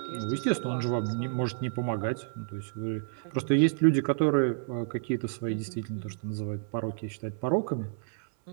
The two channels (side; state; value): left; silent; 58 dB below the other